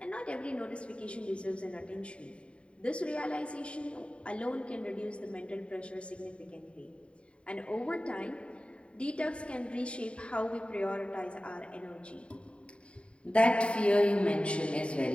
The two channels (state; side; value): late; right; 0.059 ms